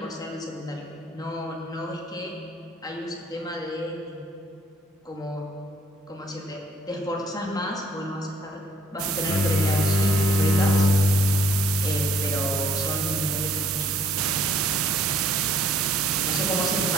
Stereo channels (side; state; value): both; normal; correlation 0.62